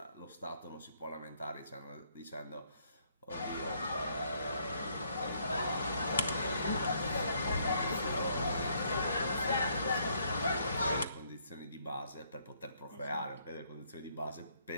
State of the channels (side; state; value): both; inverted; correlation -0.69